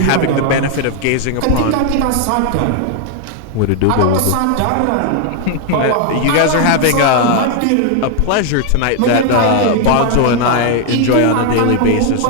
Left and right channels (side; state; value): both; different; correlation 0.00